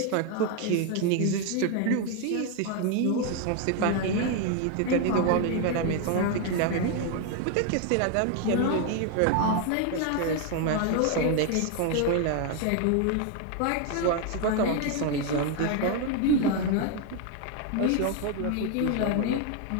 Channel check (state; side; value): different; both; correlation 0.01